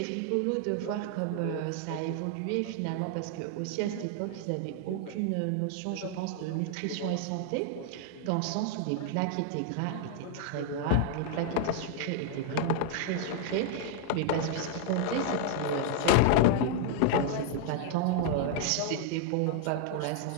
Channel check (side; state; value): both; different; correlation 0.00